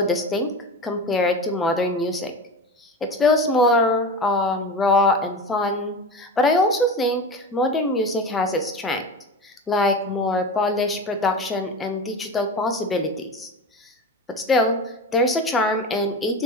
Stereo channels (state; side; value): normal; both; correlation 0.27